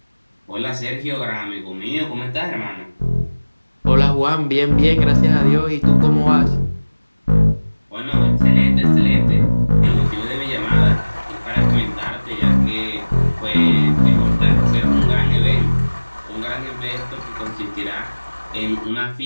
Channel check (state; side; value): inverted; both; correlation -1.00